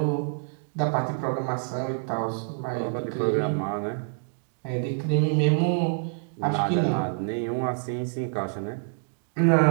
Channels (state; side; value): silent; left; digital silence